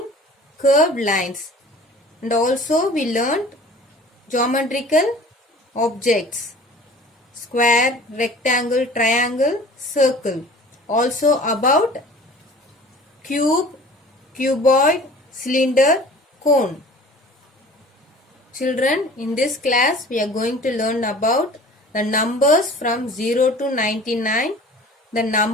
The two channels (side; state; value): both; normal; correlation 0.45